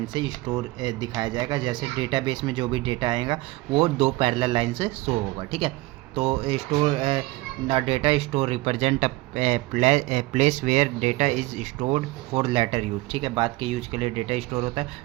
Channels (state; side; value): quieter; left; 20.4 dB